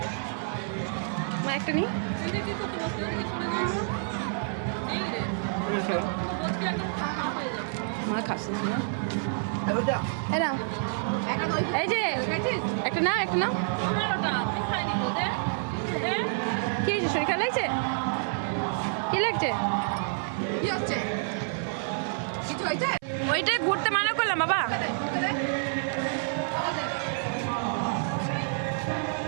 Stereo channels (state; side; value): silent; left; 56 dB below the other